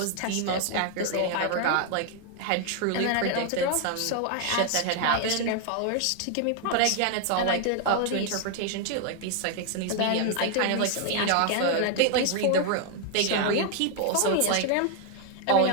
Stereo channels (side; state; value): both; different; correlation 0.00